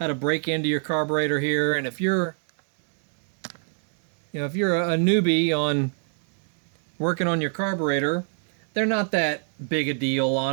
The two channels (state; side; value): silent; left; 58 dB below the other